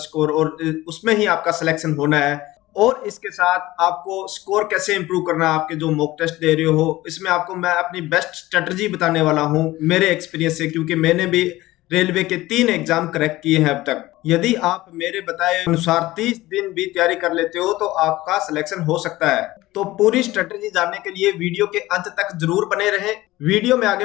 स्कोर, और उसमें ही आपका सिलेक्शन होना है। और इसके साथ आपको स्कोर कैसे इंप्रूव करना है, आपके जो मॉक टेस्ट दे रहे हो इसमें आपको मैं अपनी बेस्ट स्ट्रेटजी बताने वाला हूं मेरे एक्सपीरियंस से, क्योंकि मैंने भी रेलवे के 3 एग्जाम क्रैक किए हैं अब तक। यदि आप मेरे बताए अनुसार 30 दिन भी तैयारी कर लेते हो तो आपका सिलेक्शन हो सकता है। तो पूरी स्ट्रेटजी जानने के लिए वीडियो के अंत तक जरूर बने रहें। वीडियो में आगे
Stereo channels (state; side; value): quieter; right; 17.7 dB